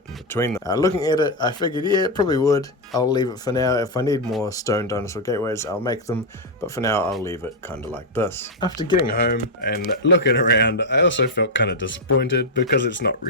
in between them. Looking at it, I figured, yeah, it probably would. I'll leave it for now. If I need more stone dinosaur gateways, I'll make them, but for now I'll leave it kind of like this. After getting home and looking around, I also felt kind of disappointed because it's not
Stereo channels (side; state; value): both; normal; correlation 0.01